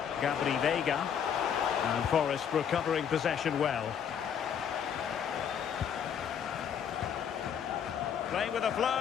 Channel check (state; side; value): quieter; right; 8.1 dB